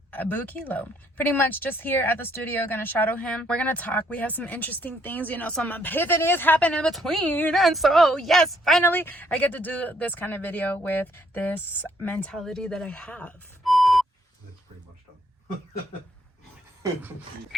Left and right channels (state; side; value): normal; both; correlation 0.69